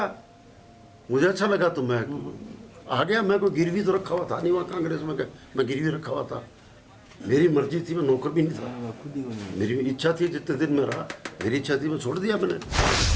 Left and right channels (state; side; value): identical; both; correlation 1.00